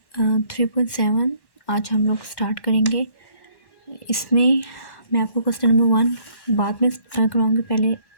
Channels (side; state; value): right; late; 1.1 ms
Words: 3.7 आज हम लोग स्टार्ट करेंगे। इसमें मैं आपको क्वेश्चन नंबर 1 बाद में करवाऊँगी। पहले